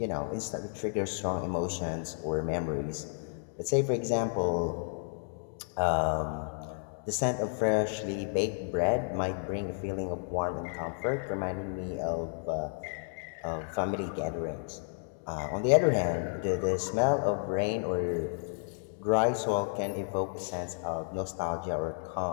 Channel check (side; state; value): right; silent; 57 dB below the other